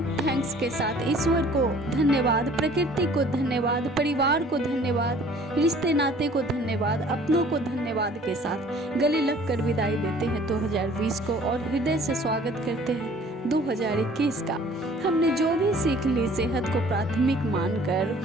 थैंक्स के साथ, ईश्वर को धन्यवाद, प्रकृति को धन्यवाद, परिवार को धन्यवाद, रिश्ते नाते को धन्यवाद, अपनों को धन्यवाद के साथ गले लग कर विदाई देते हैं 2020 को, और हृदय से स्वागत करते हैं 2021 का। हमने जो भी सीख ली, सेहत को प्राथमिक मानकर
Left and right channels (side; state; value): both; normal; correlation 0.52